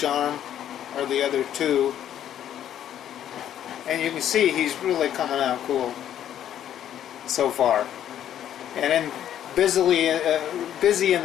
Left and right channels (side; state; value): right; quieter; 10.7 dB